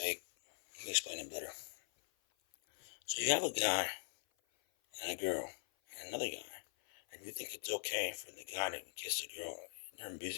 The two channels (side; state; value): right; silent; 50 dB below the other